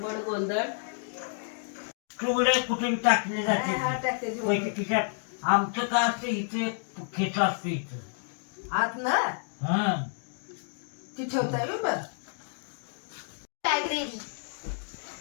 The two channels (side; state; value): right; silent; 58 dB below the other